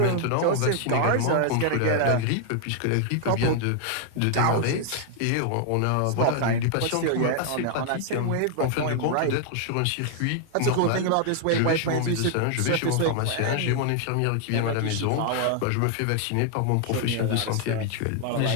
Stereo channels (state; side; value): different; both; correlation 0.00